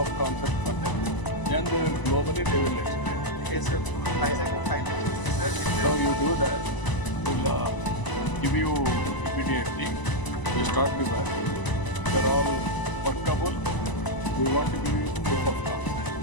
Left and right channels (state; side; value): late; right; 1.0 ms